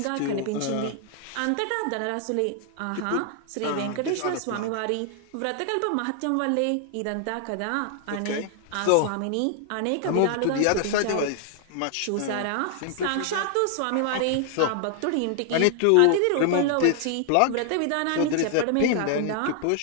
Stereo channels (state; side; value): different; both; correlation 0.00